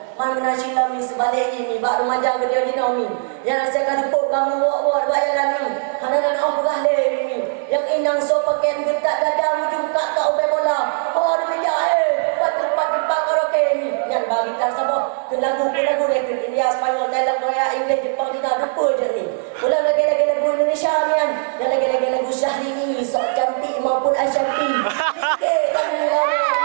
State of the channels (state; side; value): silent; left; 66 dB below the other